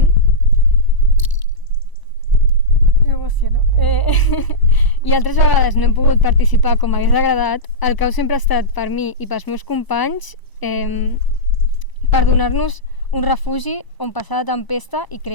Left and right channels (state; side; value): late; right; 1.0 ms